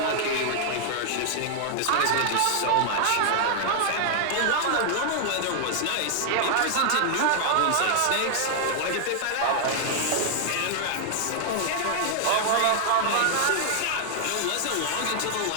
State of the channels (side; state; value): both; different; correlation 0.00